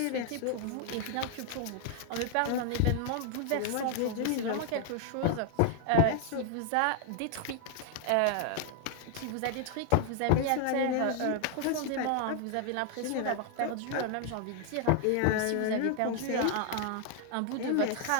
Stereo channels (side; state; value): both; different; correlation 0.00